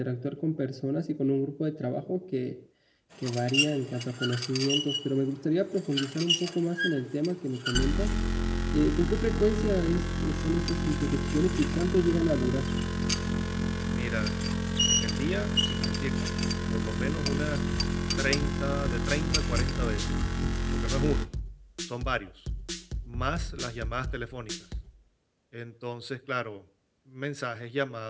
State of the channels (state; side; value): identical; both; correlation 1.00